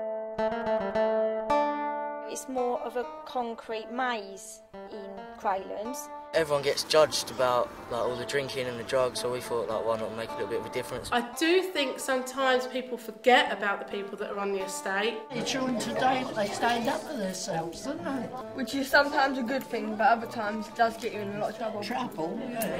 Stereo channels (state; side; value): identical; both; correlation 1.00